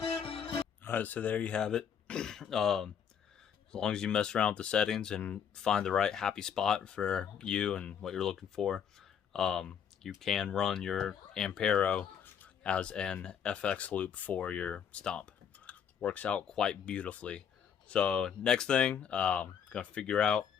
Alright, so there you have it. As long as you mess around with the settings and find the right happy spot for you and what you're looking for, you can run your Ampero as an FX loop for your Stomp. works out quite beautifully. So next thing, I'm gonna figure out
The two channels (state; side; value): quieter; right; 7.9 dB